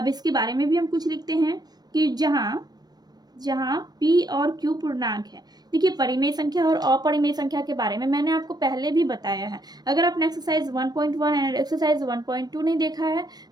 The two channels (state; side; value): late; left; 0.19 ms